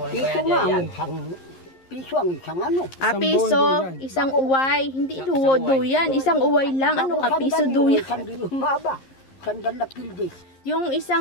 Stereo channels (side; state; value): right; late; 11 ms